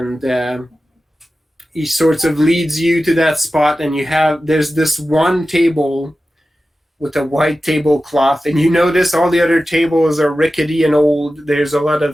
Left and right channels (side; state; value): both; normal; correlation 0.94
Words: he sort of leads you to that spot, and there's this one table with a white tablecloth, and you notice all the other tables are rickety and old. There's a lot